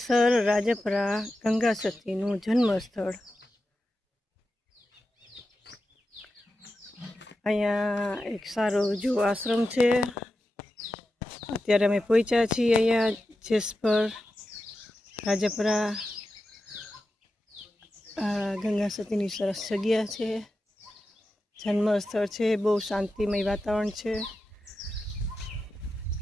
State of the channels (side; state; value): both; normal; correlation 0.91